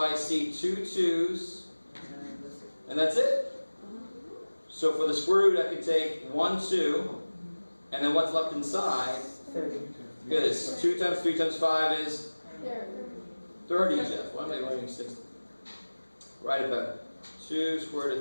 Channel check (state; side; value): inverted; both; correlation -1.00